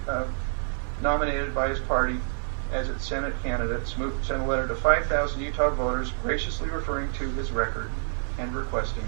nominated by his party as its Senate candidate, Smoot sent a letter to 5,000 Utah voters graciously referring to his record and requesting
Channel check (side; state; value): left; silent; digital silence